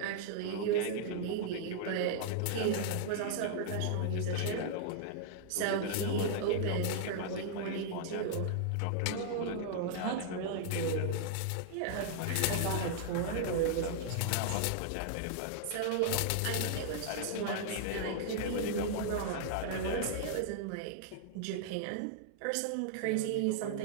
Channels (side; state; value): both; different; correlation -0.01